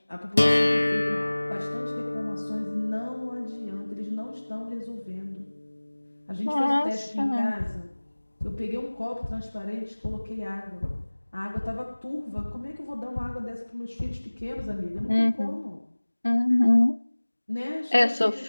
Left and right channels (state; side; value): inverted; both; correlation -1.00